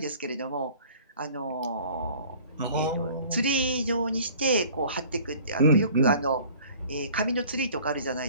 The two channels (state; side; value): inverted; both; correlation -0.49